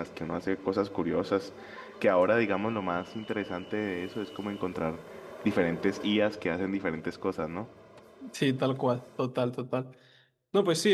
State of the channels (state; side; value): identical; both; correlation 1.00